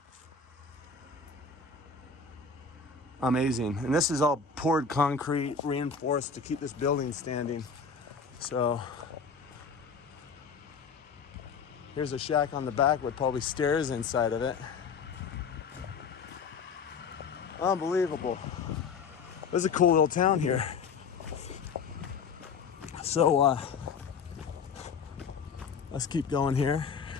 Amazing. And this is all poured concrete, reinforced to keep this building standing. So here's a shack on the back with probably stairs inside of it. Unbelievable. This is a cool little town here. So let's keep going here.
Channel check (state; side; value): quieter; right; 5.4 dB